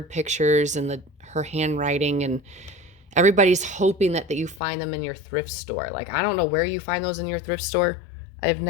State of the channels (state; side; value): drops out; right; at 4.6 s